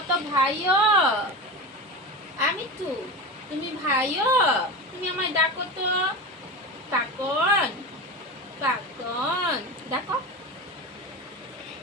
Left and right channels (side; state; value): both; normal; correlation 0.25